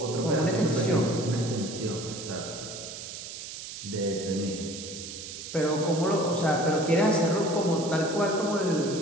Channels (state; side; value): noise; right; hiss, 10 dB below the sound